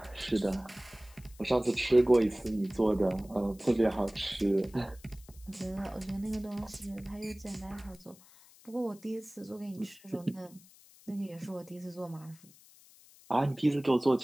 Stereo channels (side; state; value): left; noise; hiss, 24 dB below the sound